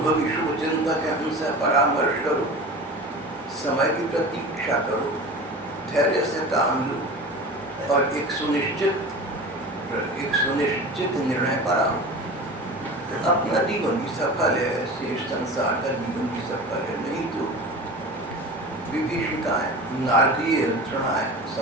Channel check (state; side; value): normal; both; correlation 0.34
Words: शुभ चिंतक हैं उनसे परामर्श करो, समय की प्रतीक्षा करो, धैर्य से काम लो और एक सुनिश्चित निर्णय पर आओ। अपना जीवन भी सफल है, शेष संसार का जीवन भी सफल है। नहीं तो विभीषिकाएं, नारकीय यंत्रणाएं